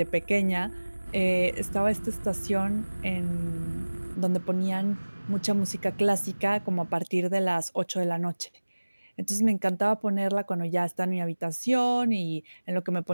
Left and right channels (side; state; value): both; inverted; correlation -1.00